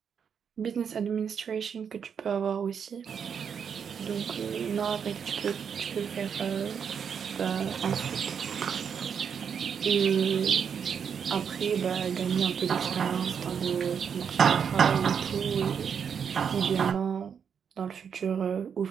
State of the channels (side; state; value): left; quieter; 7.2 dB